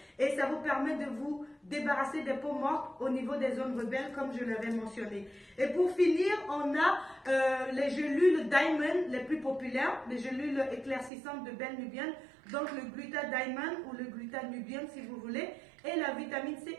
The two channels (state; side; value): drops out; left; at 11.1 s